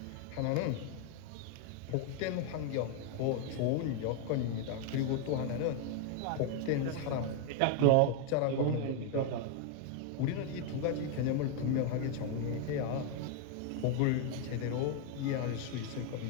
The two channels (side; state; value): both; different; correlation 0.00